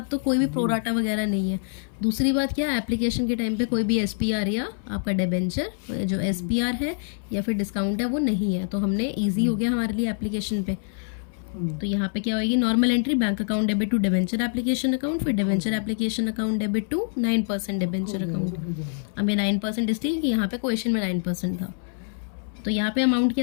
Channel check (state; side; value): silent; right; 62 dB below the other